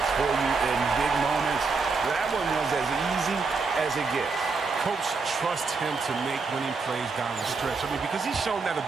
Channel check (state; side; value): quieter; left; 4.4 dB